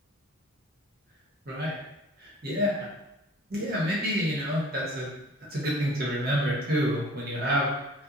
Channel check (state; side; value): normal; both; correlation 0.48